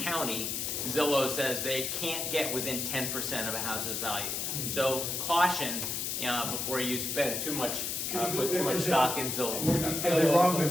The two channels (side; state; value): left; noise; hiss, 2 dB below the sound